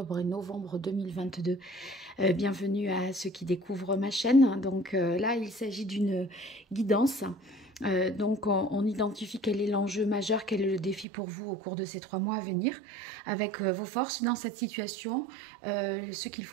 et novembre 2022. Bienvenue à ceux qui découvrent ma chaîne. Donc là, il s'agit d'une guidance. Donc on identifie quel est l'enjeu majeur, quel est le défi pour vous au cours de ces 3 mois à venir, avec vos forces dans cette situation, ce qu'il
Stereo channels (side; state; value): left; drops out; at 11.1 s